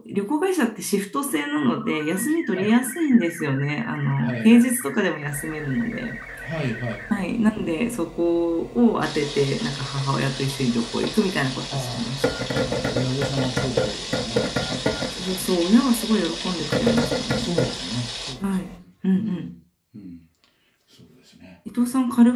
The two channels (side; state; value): both; identical; correlation 1.00